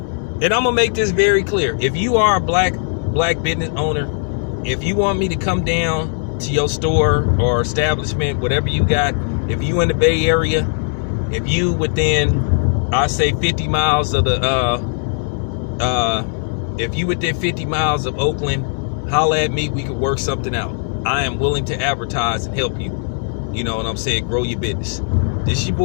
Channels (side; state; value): right; silent; digital silence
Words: And I'm gonna make this very clear. If you are a black business owner, if you want me to come down to your store or establishment, whatever you got, if you in the Bay Area, if you within, I say 50 miles of if you within 50 miles of Oakland, holla at me, we could work something out. I am willing to advertise and help you. You know what I'm saying? Grow your business. This is your